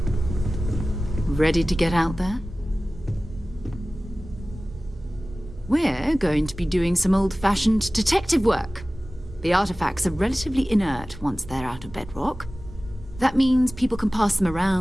Ready to get out there? We're going to be doing some old-fashioned detective work. The artifacts are relatively inert once they're out of bedrock. That means people can pass them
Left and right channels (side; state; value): both; normal; correlation 0.97